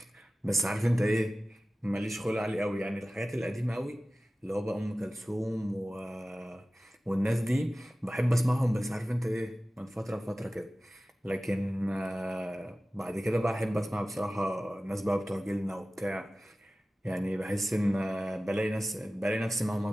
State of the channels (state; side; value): normal; both; correlation 0.96